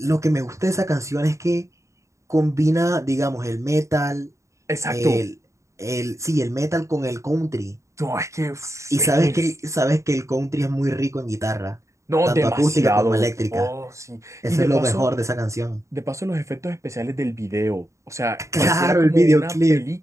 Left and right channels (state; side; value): late; left; 0.14 ms